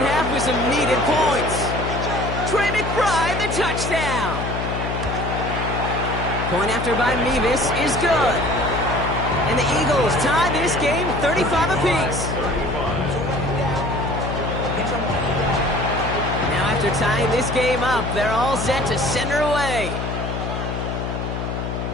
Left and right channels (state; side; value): noise; left; hum, 4 dB below the sound